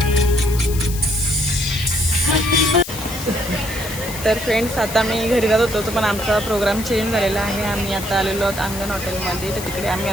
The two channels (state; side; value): noise; left; hiss, 10 dB below the sound